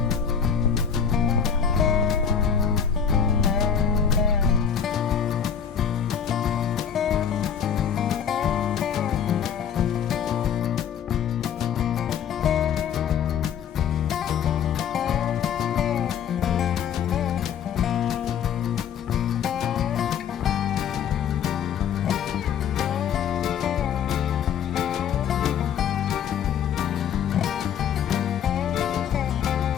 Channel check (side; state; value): right; quieter; 7.8 dB